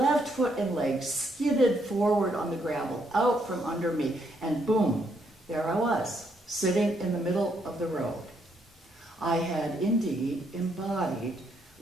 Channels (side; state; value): both; normal; correlation 0.74